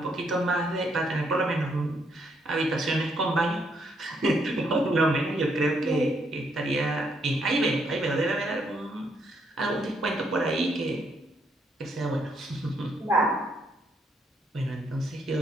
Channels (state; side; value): normal; both; correlation 0.73